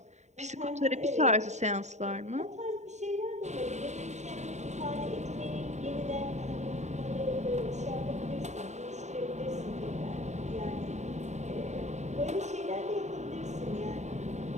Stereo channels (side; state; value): left; late; 0.34 ms